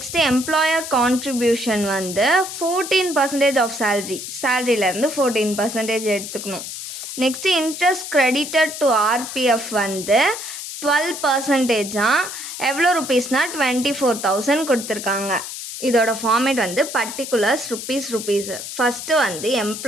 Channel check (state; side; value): noise; left; hiss, 8 dB below the sound